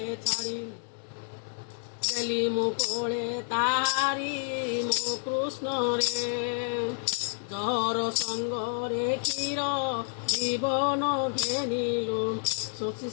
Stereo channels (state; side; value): silent; right; 58 dB below the other